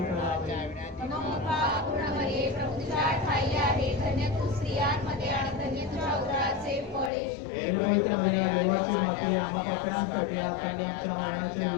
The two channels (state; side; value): drops out; right; at 7.1 s